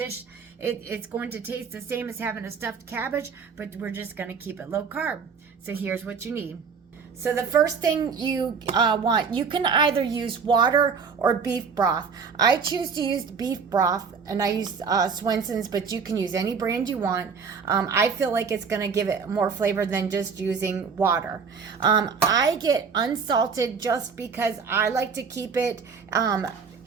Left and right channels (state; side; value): quieter; left; 5.8 dB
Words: It's going to taste the same as having a stuffed cabbage, but we're just going to keep it low carb. So here's what you need. So the first thing you want, you can either use water or beef broth. I choose to use beef broth, and I use Swenson's, but you can use any brand you want. I feel like it's going to give it more flavor than just using water. I get unsalted just because I like to keep it